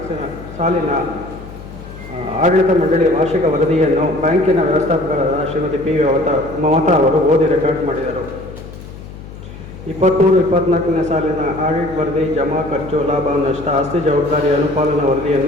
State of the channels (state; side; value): noise; left; hum, 14 dB below the sound